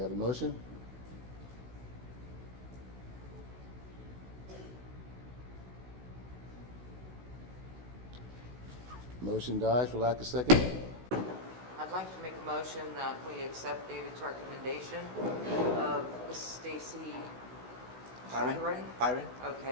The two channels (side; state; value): left; late; 16 ms